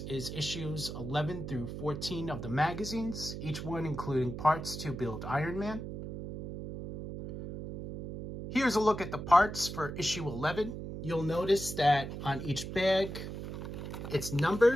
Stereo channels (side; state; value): right; noise; hum, 7 dB below the sound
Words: is issues 11 through 14 of the magazines, each one including parts to build Iron Man. Here's a look at the parts for issue 11. You'll notice that on each bag, it's